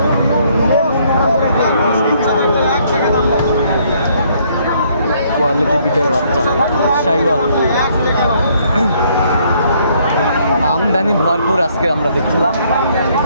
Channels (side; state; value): both; inverted; correlation -0.67